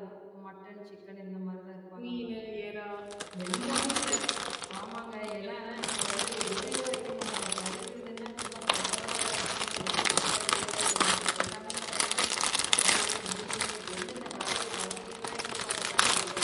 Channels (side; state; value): both; identical; correlation 1.00